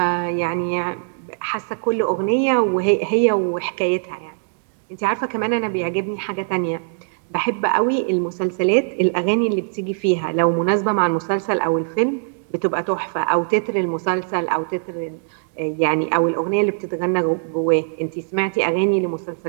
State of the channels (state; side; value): silent; left; digital silence